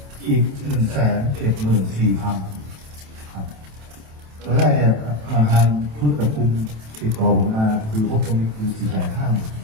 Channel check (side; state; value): left; late; 27 ms